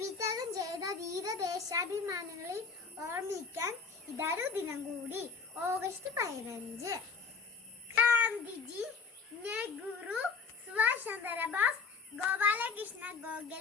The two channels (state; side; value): quieter; right; 5.1 dB